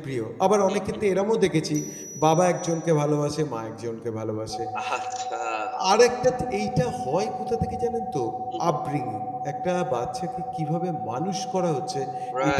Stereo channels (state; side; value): identical; both; correlation 1.00